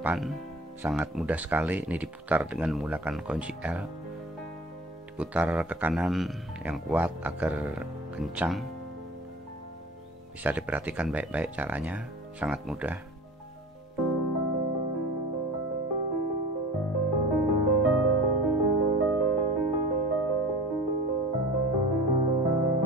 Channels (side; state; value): both; normal; correlation 0.40